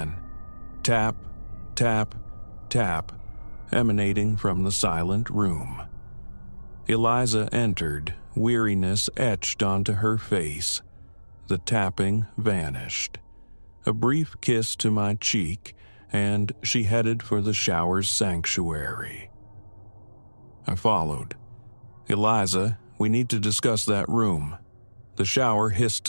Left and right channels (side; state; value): both; inverted; correlation -1.00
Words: Tap, tap, tap, emanating from the silent room. Eliza entered, weariness etched onto her face. The tapping vanished. A brief kiss to my cheek, and she headed for the shower's sanctuary. I followed. "Eliza, we need to discuss that room." The shower hissed